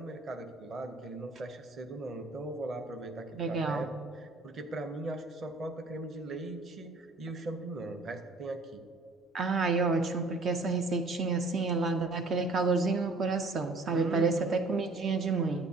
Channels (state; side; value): quieter; left; 3.4 dB